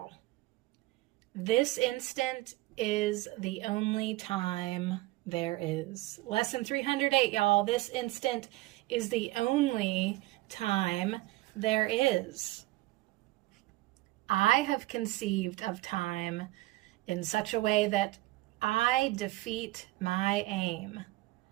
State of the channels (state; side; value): quieter; left; 19.2 dB